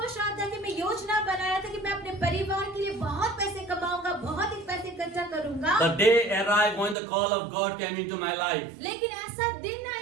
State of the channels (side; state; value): left; drops out; at 7.0 s